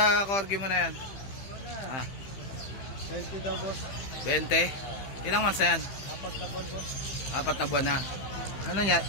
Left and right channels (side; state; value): right; late; 15 ms